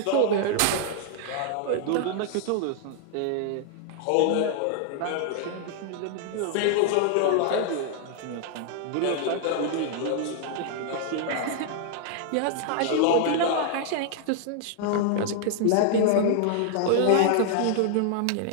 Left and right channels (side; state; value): both; different; correlation -0.01